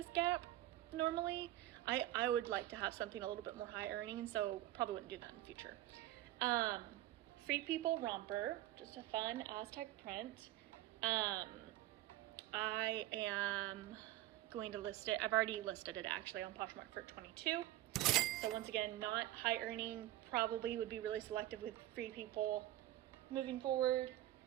Gap normally. I would like to have something a little bit more high earning, so probably wouldn't do that in the future. Free People romper, just a fun Aztec print. I am going to list it. I've already listed it actually on Poshmark for $22. So once again, not high earning, probably would be really selective with Free People moving forward.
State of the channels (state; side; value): quieter; left; 15.0 dB